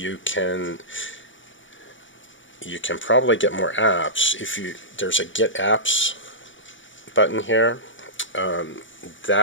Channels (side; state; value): right; late; 0.56 ms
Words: can probably get more apps if there's a Get Apps button here.